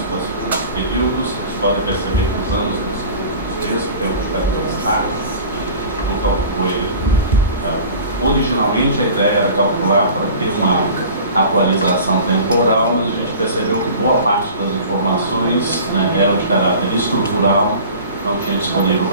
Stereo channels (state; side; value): inverted; both; correlation -0.41